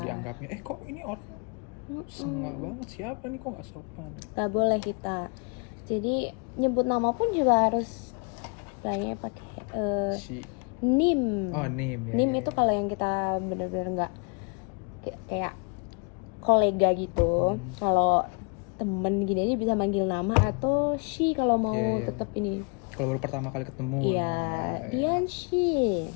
Dianggapnya kok ini orang sengak banget, siapa nih kok nggak sopan. Nggak boleh kita. Jadi nyebut nama pun juga harus kayaknya pakai nim. Oh, nim ya. Nim itu kalau yang kita benar-benar nggak kayak kolega gitu. Kalau temen gini aja bisa manggil nama atau she kalau mau tetap ini. Kalau baru pertama kali ketemu. Iya, Dian she.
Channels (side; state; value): right; quieter; 34.8 dB